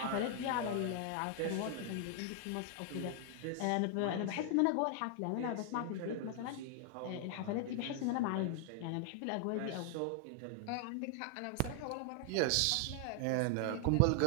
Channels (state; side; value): different; both; correlation 0.00